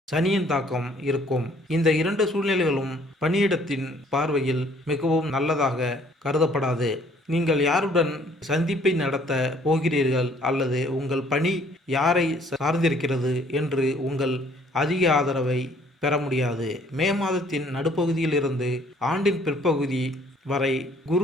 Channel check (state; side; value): normal; both; correlation 0.60